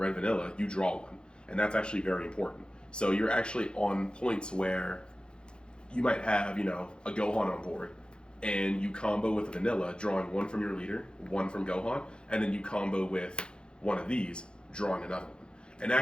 vanilla, you draw 1. And that's actually very important. So you're actually on points where you might have, a Gohan on board, and you combo with a vanilla, drawing 1 from your leader, 1 from Gohan, and then you combo with one of these, drawing another one. And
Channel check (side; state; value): right; late; 0.051 ms